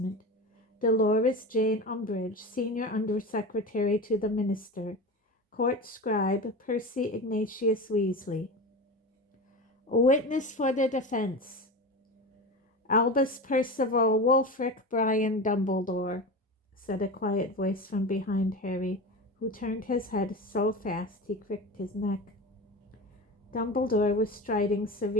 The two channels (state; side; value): normal; both; correlation 0.27